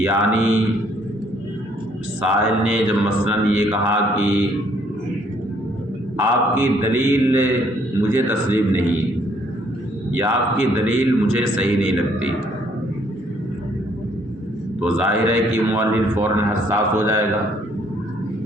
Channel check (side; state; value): both; normal; correlation 0.65